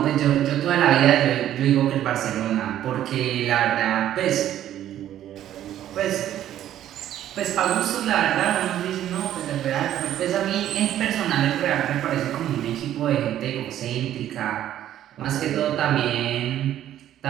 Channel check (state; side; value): quieter; left; 11.8 dB